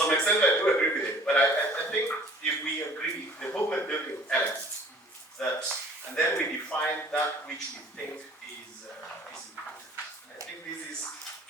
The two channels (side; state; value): both; normal; correlation 0.51